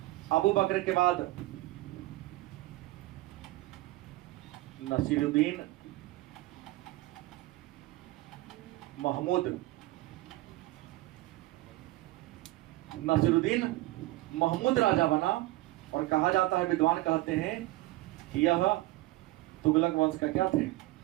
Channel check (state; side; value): quieter; left; 18.6 dB